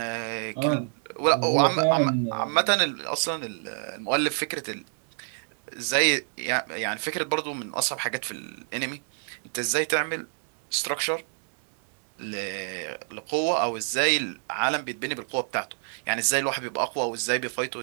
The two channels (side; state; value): left; silent; digital silence